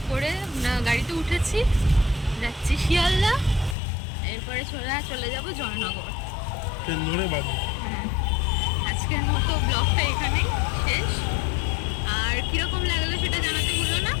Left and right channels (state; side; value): drops out; right; at 3.8 s